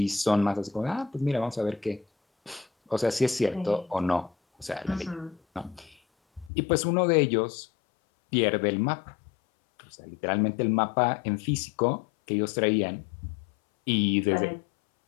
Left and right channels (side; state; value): right; drops out; at 6.5 s